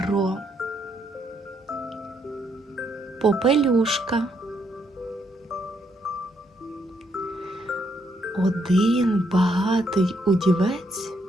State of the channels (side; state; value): both; normal; correlation 0.74